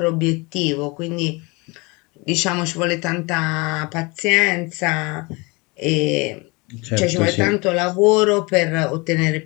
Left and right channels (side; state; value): right; quieter; 26.7 dB